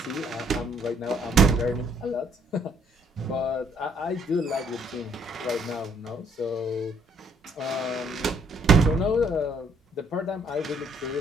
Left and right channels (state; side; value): normal; both; correlation 0.66